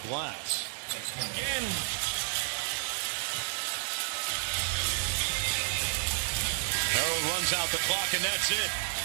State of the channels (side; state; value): left; silent; digital silence